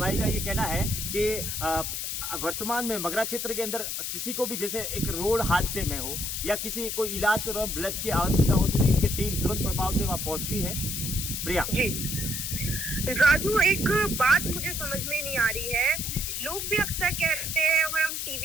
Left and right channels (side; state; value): left; noise; hiss, 3 dB below the sound